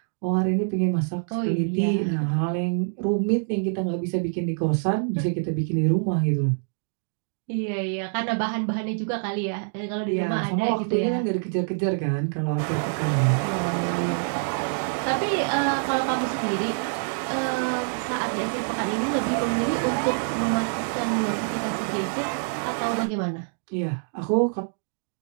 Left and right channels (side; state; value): left; silent; digital silence